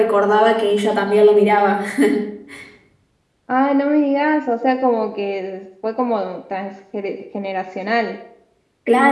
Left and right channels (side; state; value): both; identical; correlation 1.00